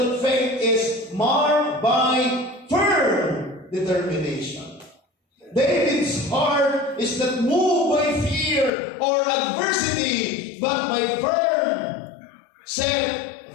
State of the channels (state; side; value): drops out; right; at 8.7 s